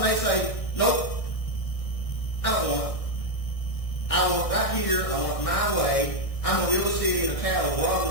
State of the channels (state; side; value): late; right; 1.6 ms